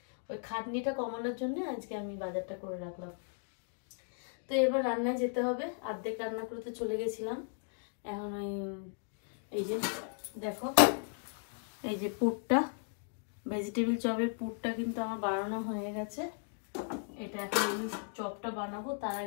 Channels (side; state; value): right; silent; 54 dB below the other